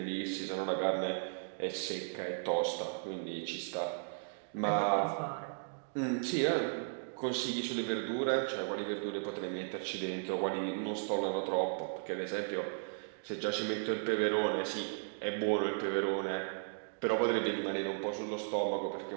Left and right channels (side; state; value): left; silent; digital silence